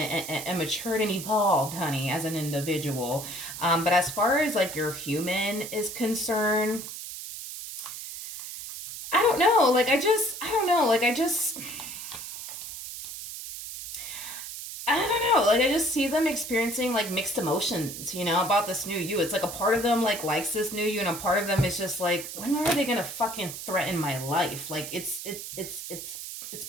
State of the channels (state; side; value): noise; right; hiss, 9 dB below the sound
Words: matured and evolved, honey, as an individual. But as far as like your human is concerned, I don't know. I don't know. I don't know. Like, I just see them experiencing like mixed emotions, about this new you. It's like a part of them like likes this new you, and a part of them is just like, when are they gonna fucking threaten my life? Like, it's